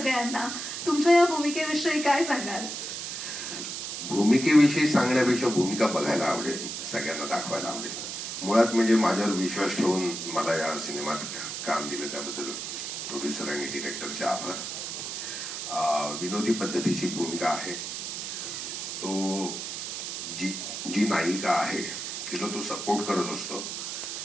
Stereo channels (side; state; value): right; noise; hiss, 5 dB below the sound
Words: तुमच्या या भूमिकेविषयी काय सांगाल? भूमिकेविषयी सांगण्यापेक्षा भूमिका बघायला आवडेल, सगळ्यांना दाखवायला आवडेल. मुळात म्हणजे माझ्यावर विश्वास ठेवून मला या सिनेमात काम दिलं त्याबद्दल प्रोड्युसर आणि डिरेक्टरचे आभार. विनोदी पद्धतीची भूमिका आहे. तो जी नायिका आहे तिला तो सपोर्ट करत असतो